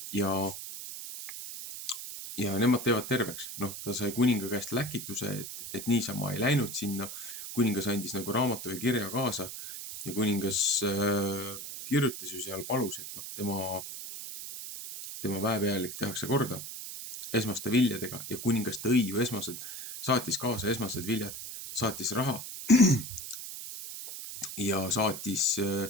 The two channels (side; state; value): right; noise; hiss, 9 dB below the sound